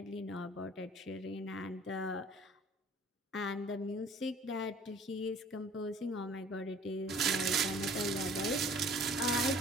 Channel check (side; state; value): both; normal; correlation 0.51